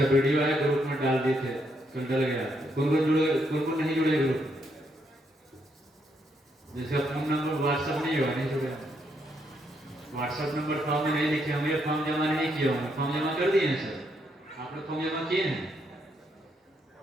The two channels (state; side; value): normal; both; correlation 0.76